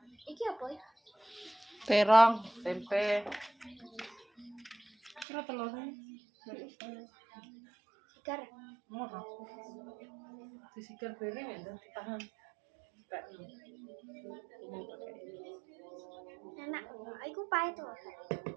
Iki apa ya? Terong, tempe. Kira telurnya. Sigar. Mau disigar bareng ya, ditahan. Enak. Iku pahit to.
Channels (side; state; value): left; drops out; at 5.2 s